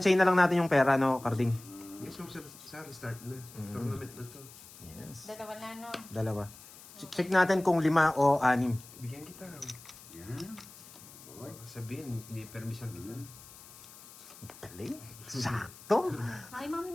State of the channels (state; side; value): noise; left; hiss, 19 dB below the sound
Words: na lang natin yung pera, no, Carding? Yes, mo sa restart na. Tournament na to. Yes. Dalawa na, no? Dalawa. Check natin kung 5 o 6. Bigyan kita. Yan. Boy. Sabihin, hindi permission kita. Galing. Sakto. Hi, Ma'am